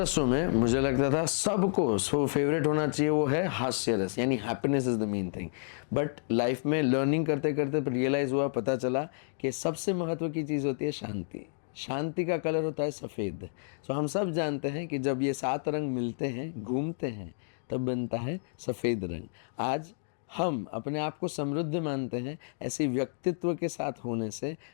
में मुझे लगता था सबको सो फेवरेट होना चाहिए वो है हास्य रस, यानी happiness is the main thing. But life में लर्निंग करते करते रियलाइज हुआ, पता चला कि सबसे महत्व की चीज़ होती है शांति। शांति का कलर होता है सफ़ेद। सो हम सब जानते हैं कि जब ये 7 रंग मिलते हैं, घूमते हैं, तब बनता है सफ़ेद रंग। आज हम अपने आप को समृद्ध मानते हैं ऐसे व्यक्तित्व के साथ होने से।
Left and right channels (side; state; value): right; silent; digital silence